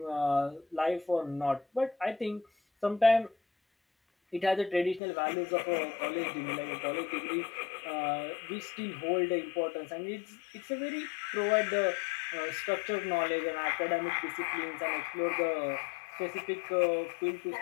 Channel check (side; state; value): right; drops out; at 5.0 s